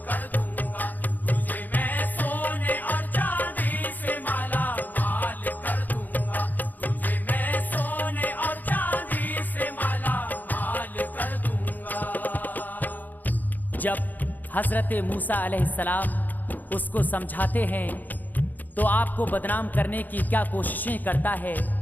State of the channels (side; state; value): right; late; 0.084 ms